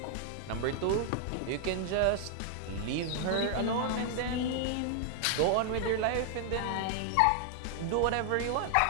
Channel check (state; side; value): different; both; correlation 0.00